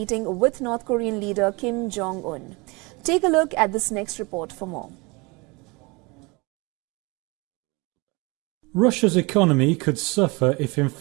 with North Korean leader Kim Jong-un. Take a look at this next report for more. Russia's economy could suffer if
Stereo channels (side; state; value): left; quieter; 26.8 dB